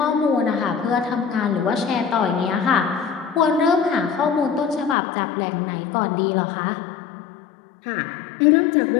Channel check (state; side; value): drops out; right; at 5.0 s